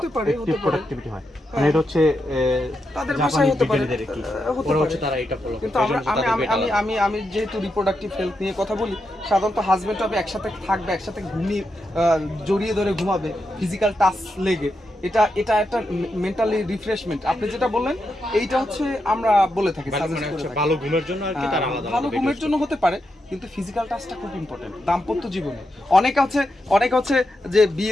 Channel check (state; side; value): normal; both; correlation 0.85